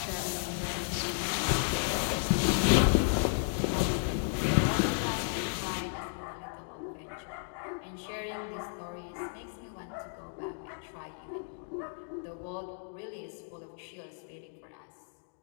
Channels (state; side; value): silent; right; digital silence